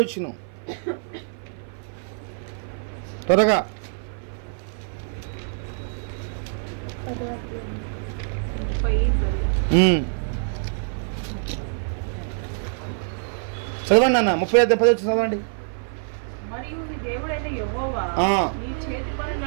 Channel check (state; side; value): silent; left; 55 dB below the other